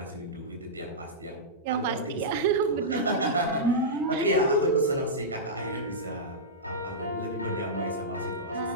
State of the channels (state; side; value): normal; both; correlation -0.14